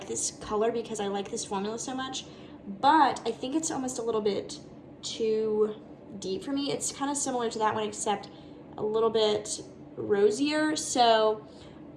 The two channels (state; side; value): identical; both; correlation 1.00